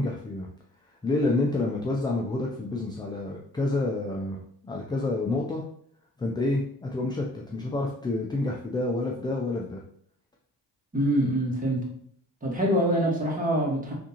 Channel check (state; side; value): normal; both; correlation 0.54